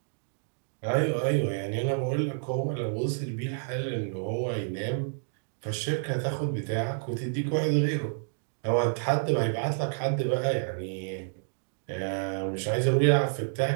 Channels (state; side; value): silent; left; digital silence